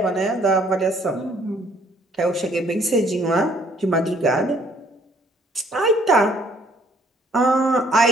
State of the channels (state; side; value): normal; both; correlation 0.62